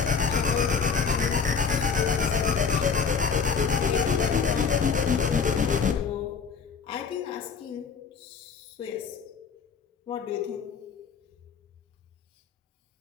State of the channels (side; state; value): right; quieter; 5.9 dB